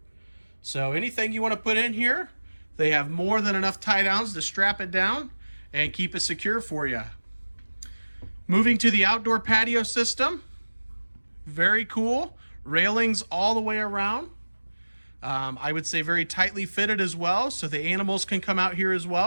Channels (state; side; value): inverted; both; correlation -1.00